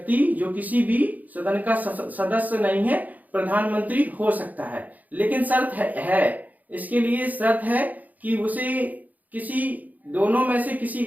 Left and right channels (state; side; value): late; left; 0.080 ms